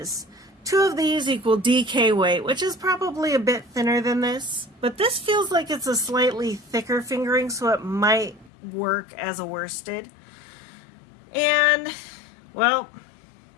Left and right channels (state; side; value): drops out; right; at 8.5 s